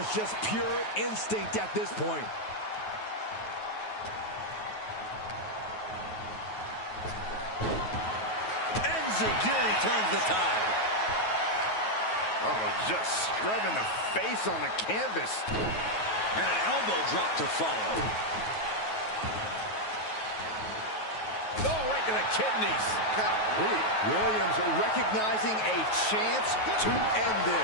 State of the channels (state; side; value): late; right; 9.3 ms